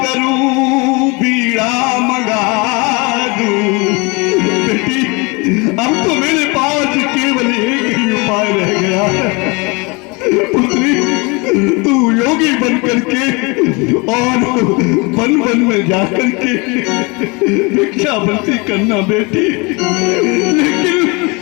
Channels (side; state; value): right; quieter; 27.9 dB